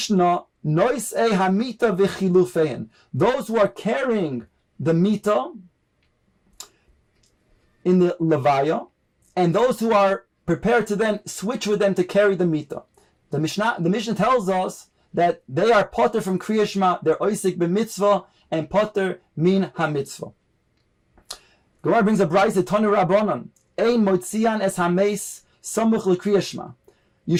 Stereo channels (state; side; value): identical; both; correlation 1.00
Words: Noisei hamita v'chilufein. Those who are carrying the mita in the levaya, and those who are prepared to then switch with them to carry the mita. The Mishnah tells us that they are potter from Kriya Shema, they're oisik b'mitzvah, and potter min ha-mitzvah. Gemara brings a brayse Tanu Rabbanan, ein motzian es ha-meis samuch l'Kriya Shema. You